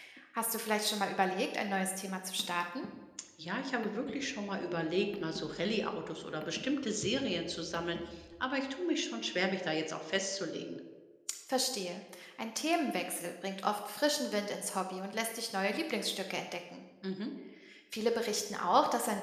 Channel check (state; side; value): identical; both; correlation 1.00